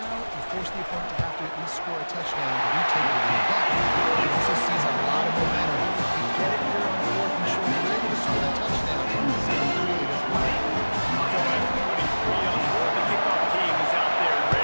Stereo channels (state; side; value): inverted; both; correlation -1.00